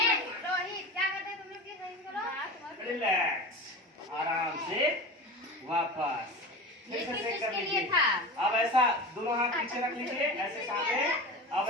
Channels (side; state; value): both; normal; correlation 0.30